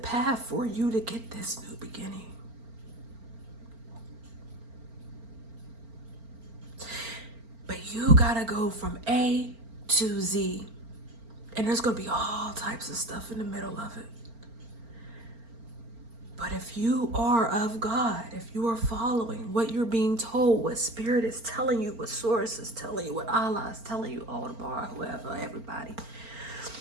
for you to get this new beginning. But you gotta go from A to Z. And there's gonna be all types of stuff in the middle of it. But if you are of God, if you are following what you're being told, what Spirit is telling you, what Source is telling you, what Allah is telling you, Aldebar, whoever, everybody,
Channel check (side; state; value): left; late; 4.4 ms